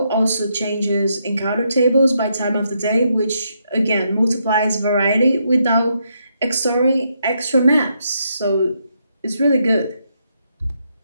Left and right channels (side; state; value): both; inverted; correlation -0.78